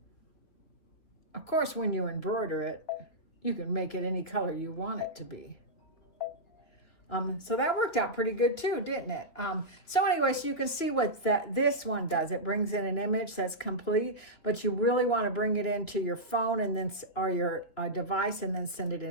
Of course, when you embroider it, you can make it any color you want it to be. So that worked out pretty good too, didn't it? So anyway, so you can see what this one does. It brings in an image that's complete, but you really want to bring it into your phone and then or your device and then send it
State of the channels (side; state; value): right; late; 3.2 ms